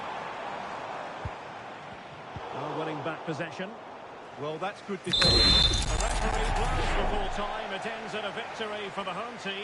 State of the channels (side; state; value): both; identical; correlation 1.00